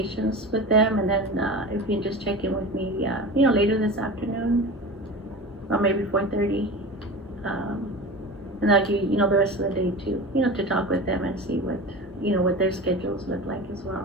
with them, and then if you can just check in with me, later this afternoon, or maybe 4:30, and I'll give you, the rest of the day too, to talk with them and see what, what their schedules look like as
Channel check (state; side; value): normal; both; correlation 0.31